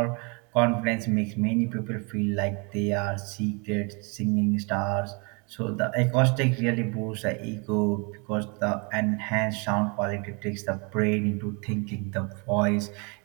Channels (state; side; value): quieter; left; 32.7 dB